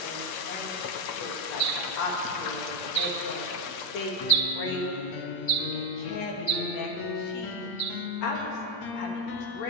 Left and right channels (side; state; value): right; late; 8.6 ms